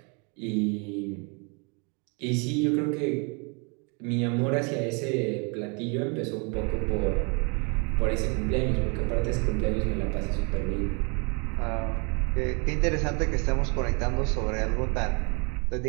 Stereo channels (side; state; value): left; quieter; 34.2 dB